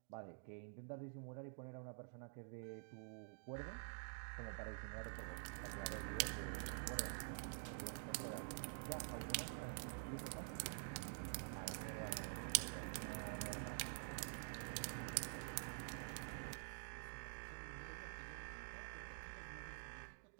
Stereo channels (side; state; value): left; silent; digital silence